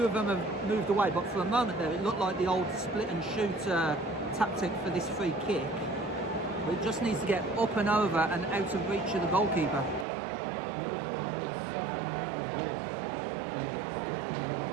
of them have moved away, but for a moment there it looked like the old split and shoot tactic for this free kick. But it just needs to get up and over and out of reach of the goalkeeper.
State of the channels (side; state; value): left; drops out; at 10.1 s